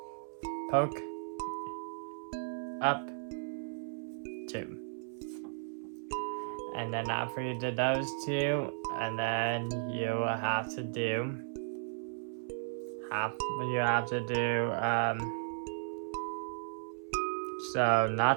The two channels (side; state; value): left; silent; 54 dB below the other